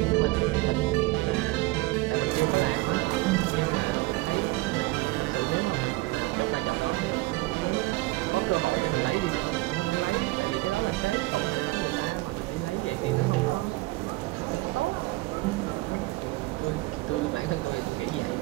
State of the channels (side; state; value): left; quieter; 21.3 dB